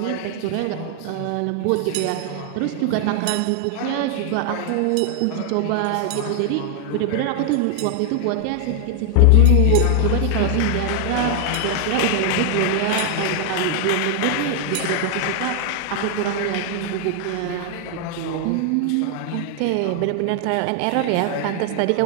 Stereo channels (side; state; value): both; different; correlation 0.00